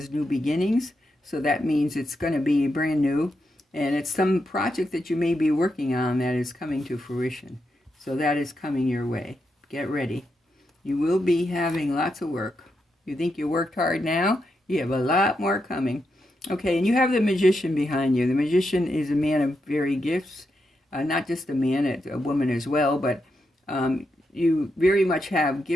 new beginnings, so that means it's going to be brand new. And it's some project that you may be working on that is coming to fruition. So that is coming your way. Get ready. You will be having lots of work. You think you worked hard now? You have a lot more coming. Okay, and you have the Magician behind you. The Magician is a man of varied gifts. Not just a man, it's a woman as well, but you very much have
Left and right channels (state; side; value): normal; both; correlation 0.84